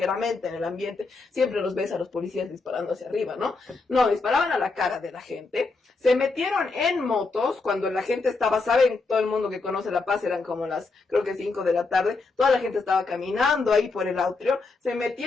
en el ambiente. Siempre los ves a los policías disparando hacia arriba, ¿no? No, disparaban a la cara de la gente. Se metieron en motos cuando la gente estaba, saben, todo el mundo que conoce La Paz, eran como las, creo que 5 de la tarde, toda la gente estaba caminando ahí por el atrio. Se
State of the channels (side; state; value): right; quieter; 3.8 dB